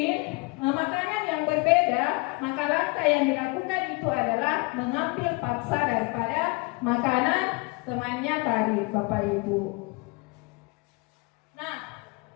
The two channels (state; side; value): quieter; right; 27.7 dB